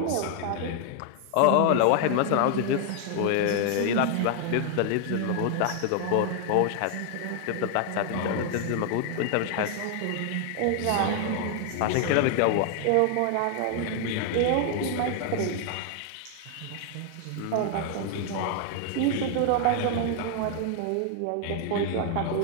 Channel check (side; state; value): both; different; correlation 0.00